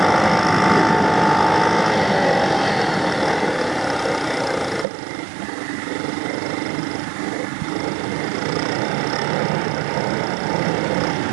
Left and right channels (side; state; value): left; drops out; at 4.9 s